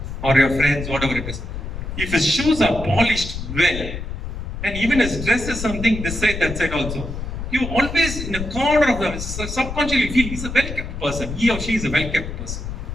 or your friends, whatever it is, if his shoes are polished well, and even his dress is something this side, that side also, you always in a corner of them, subconsciously feel he's a well-kept person, he or she is a well-kept person,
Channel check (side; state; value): left; noise; rumble, 7 dB below the sound